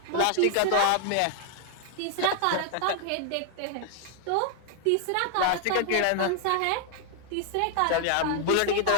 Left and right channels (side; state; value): both; different; correlation 0.00